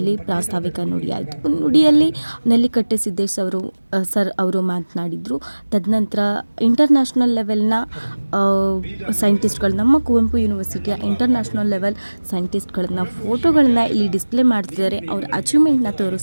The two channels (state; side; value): inverted; both; correlation -1.00